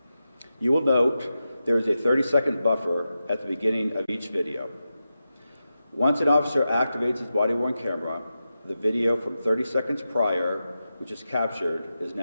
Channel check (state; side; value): inverted; both; correlation -0.91